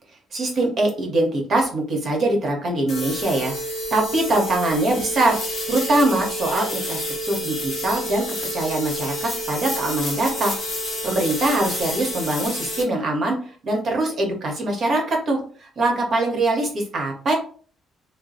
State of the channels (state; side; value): normal; both; correlation 0.73